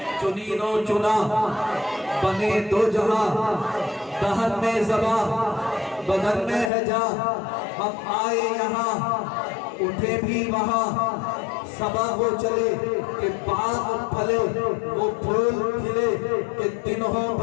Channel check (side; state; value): right; drops out; at 6.7 s